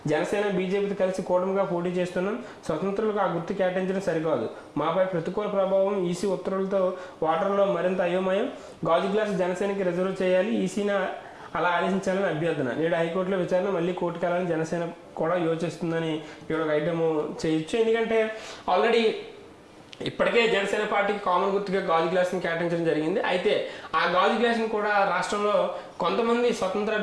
జనసేన బీజేపీతో కలిసి కూటమిగా పోటీ చేస్తున్నాం, స్వతంత్రులకు ఆ గుర్తు కేటాయించడం సరికాదు, మాపై ప్రతికూల ప్రభావం, ఈసీ ఉత్తర్వులతో ఓటర్లో మరింత అయోమయం, గాజు గ్లాస్ జనసేనకి రిజర్వ్ చేయాలి, ఈసీని అలా ఆదేశించాలని అభ్యర్థన, నేడు హైకోర్టులో విచారణ మళ్ళీ కోర్టుకు వెళ్ళాలని జనసేన కూడా యోచిస్తుందని ఇక్కడ ఒక ఐటమ్ చేయొచ్చు. ఎందుకంటే ఆల్రెడీ ఇప్పటికే జనసేన పార్టీకి కామన్ గుర్తుగా గాజు గ్లాస్ని కేటాయించడం జరిగింది. అయితే ఆ గాజు గ్లాస్ని కూడా రాష్ట్రంలో కొంతమంది స్వతంత్ర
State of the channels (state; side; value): identical; both; correlation 1.00